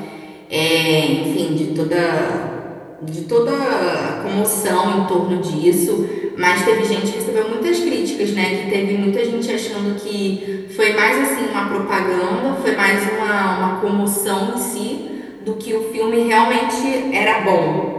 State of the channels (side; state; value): both; identical; correlation 1.00